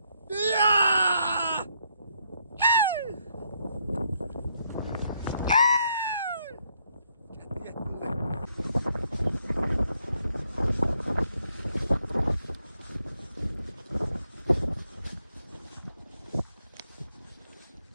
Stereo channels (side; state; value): both; inverted; correlation -0.74